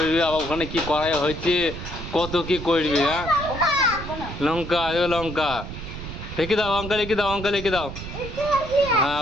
আবার ওখানে কি করাই হয়েছে, কত কি করবি। হ্যাঁ লঙ্কা, লঙ্কা রেখে দাও, লঙ্কা রেখে দাও, লঙ্কা রেখে দাও। হ্যাঁ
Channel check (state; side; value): noise; right; rumble, 9 dB below the sound